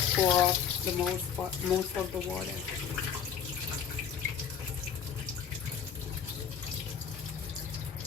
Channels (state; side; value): quieter; right; 7.7 dB